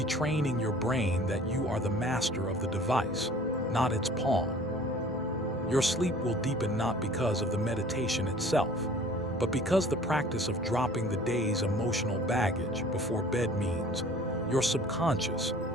your brain that you are the master of the device, not its pawn. Your sleep will deepen not because of the meditation itself, but because the practice of dropping the day's emotional baggage before bed means your subconscious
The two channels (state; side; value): normal; both; correlation 0.48